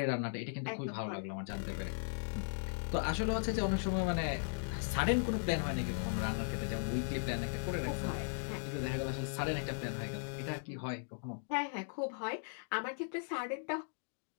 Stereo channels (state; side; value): silent; right; digital silence